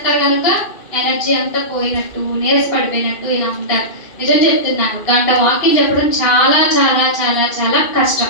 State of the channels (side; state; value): right; late; 2.5 ms